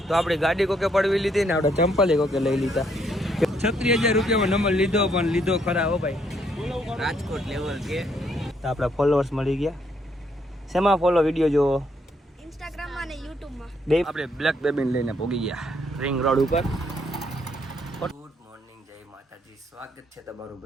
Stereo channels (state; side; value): normal; both; correlation 0.71